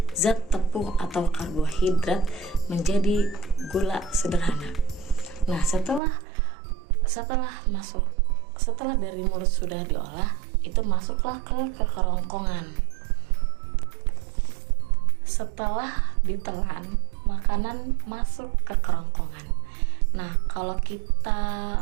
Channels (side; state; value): left; drops out; at 6.0 s